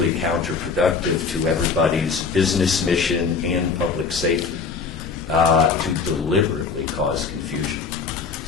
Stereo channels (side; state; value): right; quieter; 5.2 dB